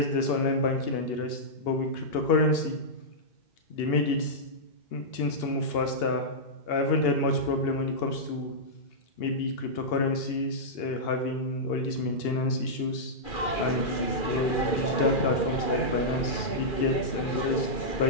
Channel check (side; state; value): right; late; 2.4 ms